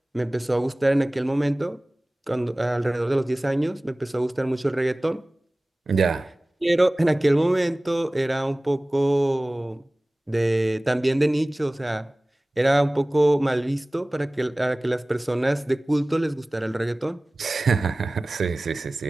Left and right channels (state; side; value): normal; both; correlation 0.98